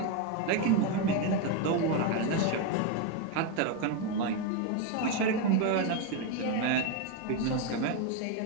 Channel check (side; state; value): both; different; correlation 0.02